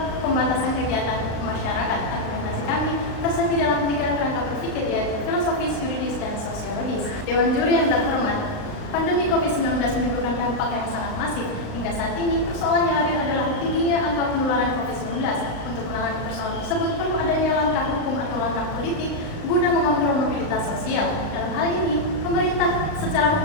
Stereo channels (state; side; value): late; right; 38 ms